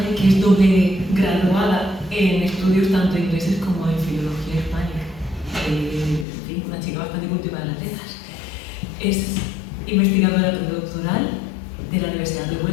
que es doble graduada en estudios tanto ingleses como en filología hispánica. En fin, una chica bastante cultivada en las letras. Es investigadora postdoctoral de la Universidad de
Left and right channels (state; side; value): drops out; right; at 6.2 s